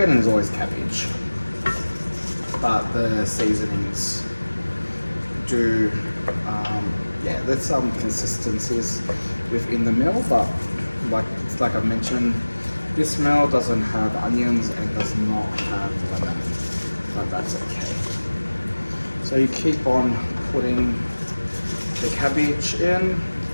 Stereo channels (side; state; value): both; inverted; correlation -1.00